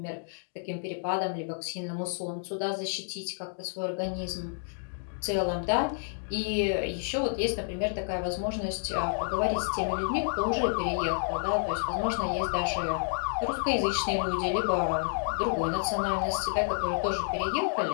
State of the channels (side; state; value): right; silent; digital silence